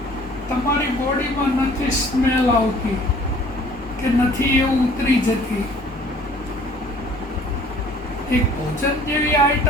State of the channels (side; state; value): both; normal; correlation 0.54